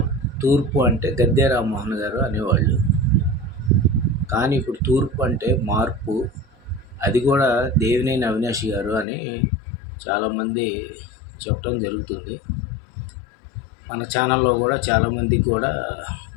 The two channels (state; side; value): drops out; right; at 9.1 s